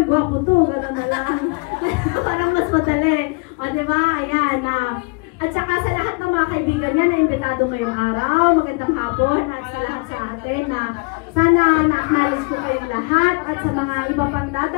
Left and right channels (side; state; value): right; quieter; 30.8 dB